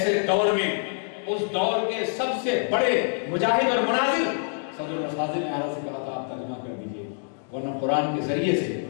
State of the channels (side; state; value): right; silent; digital silence